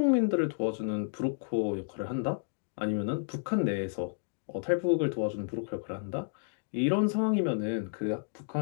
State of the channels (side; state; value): right; silent; digital silence